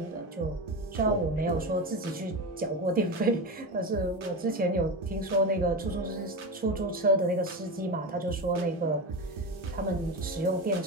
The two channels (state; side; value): normal; both; correlation 0.21